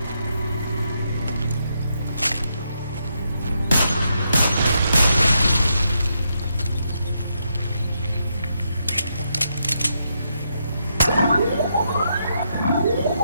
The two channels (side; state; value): both; inverted; correlation -0.80